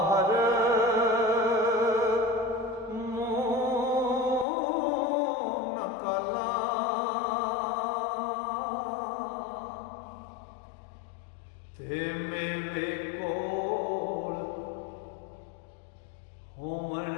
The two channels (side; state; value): right; drops out; at 4.5 s